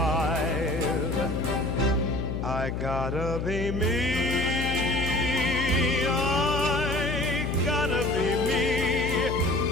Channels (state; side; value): noise; left; hum, 3 dB below the sound